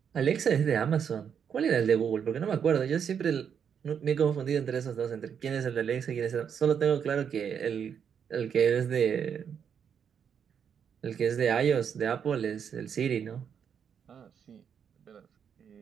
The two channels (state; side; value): quieter; left; 7.6 dB